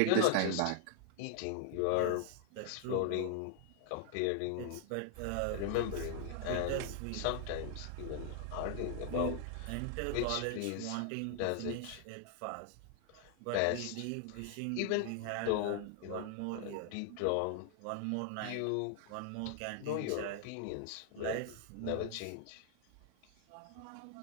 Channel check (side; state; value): both; different; correlation -0.01